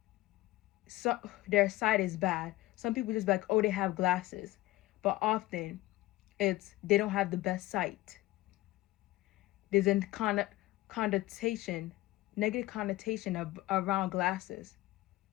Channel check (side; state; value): right; quieter; 18.2 dB